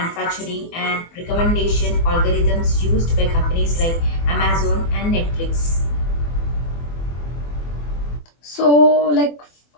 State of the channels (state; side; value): late; right; 24 ms